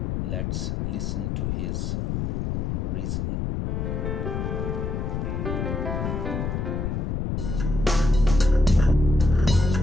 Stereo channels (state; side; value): noise; left; rumble, 1 dB below the sound